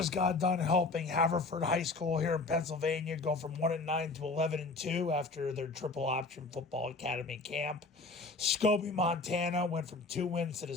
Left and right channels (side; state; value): right; quieter; 3.5 dB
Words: got done helping Haverford High School here in Pennsylvania go from 1-9 to 11-2 after their triple option football academy camp. Scobie, Montana went from 2 wins to the